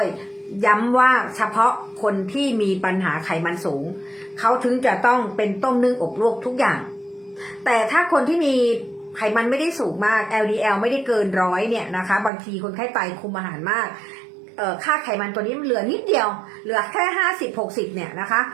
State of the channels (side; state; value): left; drops out; at 12.3 s